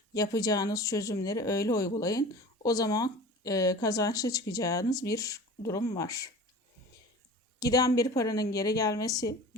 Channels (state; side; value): normal; both; correlation 0.39